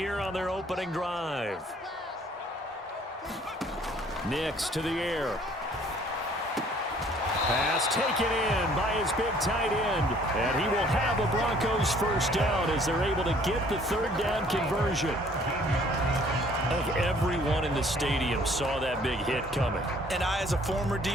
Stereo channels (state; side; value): normal; both; correlation 0.58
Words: on their opening drive. Nix to the air. Pass taken in by his big tight end. And he will have a Broncos first down as they're able to get the third down conversion. I think everyone in the stadium saw that big hit coming. And I, as a former